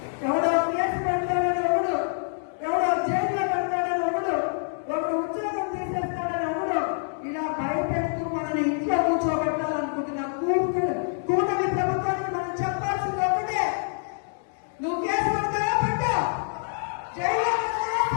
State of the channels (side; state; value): right; silent; digital silence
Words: ఎవడో కేసు పెడతాడని ఒకడు, ఎవడో జైల్లో పెడతాడని ఒకడు, ఉద్యోగం తీసేస్తాడని ఒకడు, ఇలా భయపెడుతూ మనని ఇంట్లో కూర్చోబెట్టాలనుకుంటున్న కూటమి ప్రభుత్వానికి మనం చెప్పాల్సింది ఒకటే, నువ్వు కేసు పెడతావా పెట్టా, జైల్లో